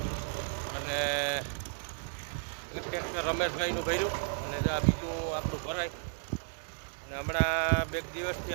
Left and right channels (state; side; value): silent; left; digital silence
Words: અને ટ્રેક્ટર રમેશભાઈનું ભર્યું, અને જો આ બીજું આપણું ભરાય. અને હમણાં બે દિવસથી